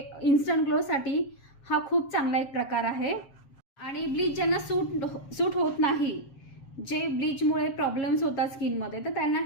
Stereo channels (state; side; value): late; right; 7.3 ms